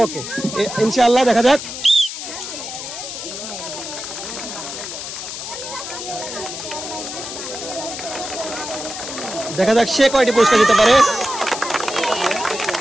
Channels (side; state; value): left; noise; hiss, 8 dB below the sound